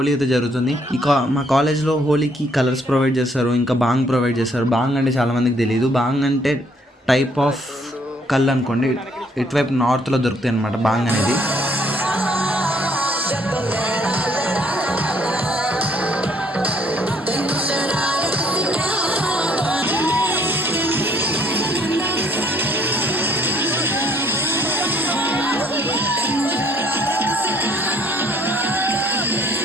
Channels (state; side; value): normal; both; correlation 0.64